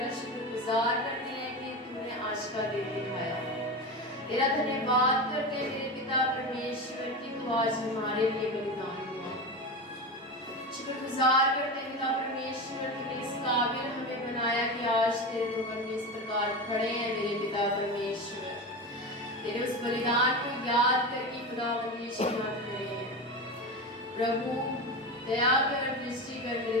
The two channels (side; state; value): both; normal; correlation 0.23